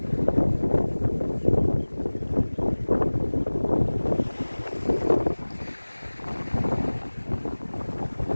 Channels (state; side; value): inverted; both; correlation -1.00